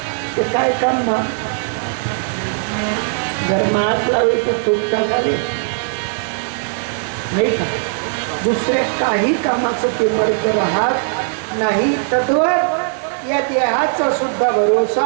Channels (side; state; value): left; silent; digital silence